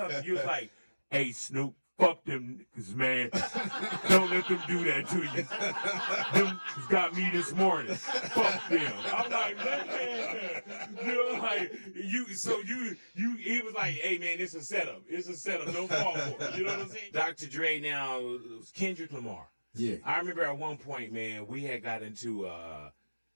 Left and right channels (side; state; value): both; inverted; correlation -1.00